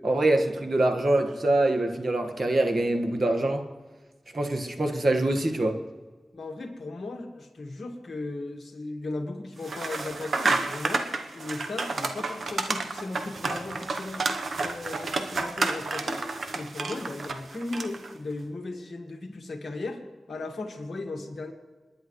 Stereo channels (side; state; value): both; normal; correlation 0.91